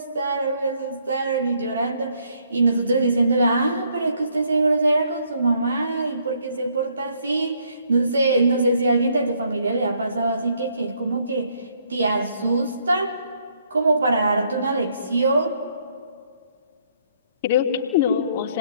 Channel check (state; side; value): inverted; both; correlation -0.69